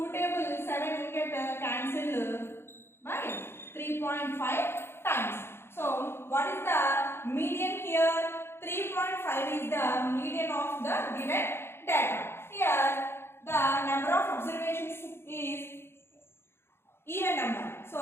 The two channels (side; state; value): right; late; 0.12 ms